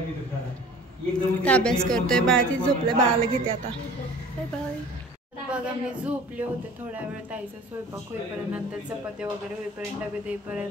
अभ्यास करतोय बाळ, ती झोपले, बाळाला घेते आता. Bye bye. बघा मी झोपले होते थोड्या वेळ, ताईचा स्वयंपाक होईपर्यंत, नंतर चपाती वगैरे होईपर्यंत, डबे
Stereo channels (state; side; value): normal; both; correlation 0.45